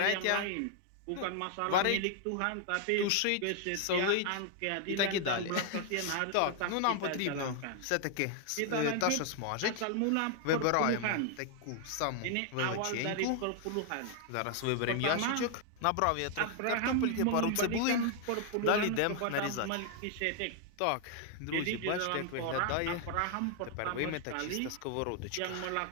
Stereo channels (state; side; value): different; both; correlation 0.00